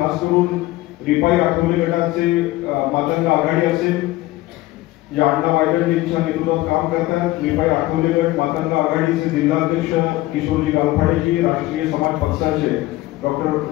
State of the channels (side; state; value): right; quieter; 17.9 dB